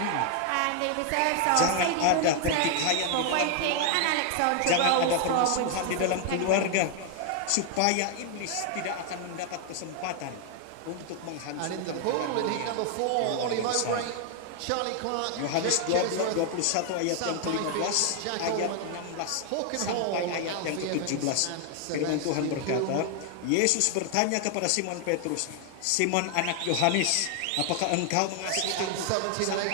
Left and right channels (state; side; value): different; both; correlation 0.00